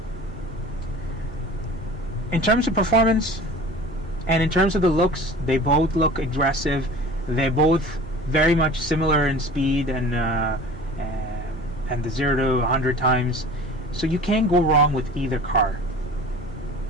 In terms of performance and in terms of the looks, they both look aggressive. They're both very much similar in speed and the 0 to 100 times. So you can't go wrong with either car.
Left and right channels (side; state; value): both; normal; correlation 0.41